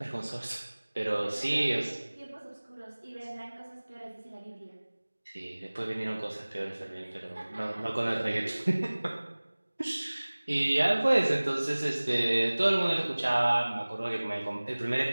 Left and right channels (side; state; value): both; inverted; correlation -1.00